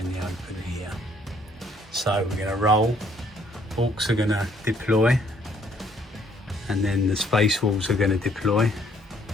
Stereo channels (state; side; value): normal; both; correlation 0.64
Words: the open here. So we're going to roll. Orcs are going to deploy, and then the SpaceWolves are going to deploy,